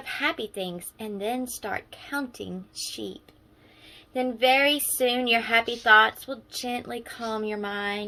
happy things and then start counting sheep. Then very soon your happy thoughts will gently calm your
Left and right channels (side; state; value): both; identical; correlation 1.00